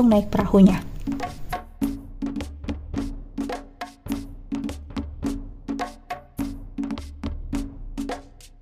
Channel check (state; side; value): identical; both; correlation 1.00